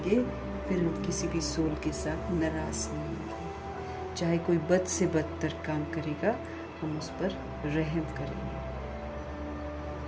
फिर हम किसी भी सोल के साथ नाराज नहीं होंगे। चाहे कोई बद से बदतर काम करेगा, हम उस पर रहम करेंगे।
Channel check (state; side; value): identical; both; correlation 1.00